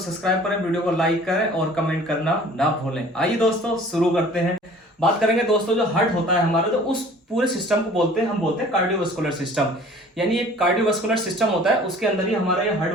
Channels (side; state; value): both; normal; correlation 0.49